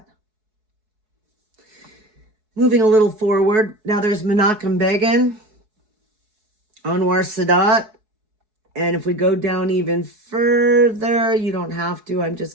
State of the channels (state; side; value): late; left; 4.7 ms